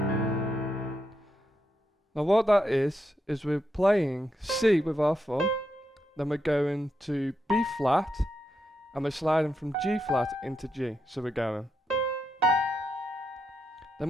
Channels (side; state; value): both; normal; correlation 0.83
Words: Now what that is we're playing C with our thumb, then we're going to B flat, and we're sliding from G flat into G. So we're going.